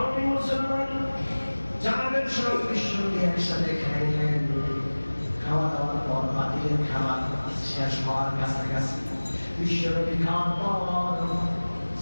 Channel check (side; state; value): both; inverted; correlation -1.00